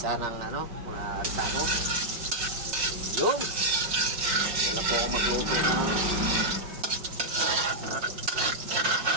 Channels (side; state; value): left; late; 5.5 ms